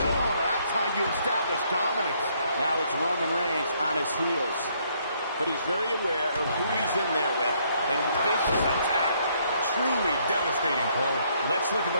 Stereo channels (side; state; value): both; inverted; correlation -0.69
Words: that's how you establish dominance. Now it's Roman Reigns on his heels. But he's very aware of who he's in there with. And vicious attack. Truly devastating, Cole. Let's look at the